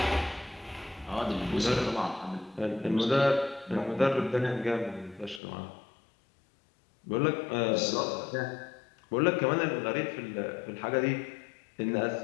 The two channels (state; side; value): drops out; right; at 5.4 s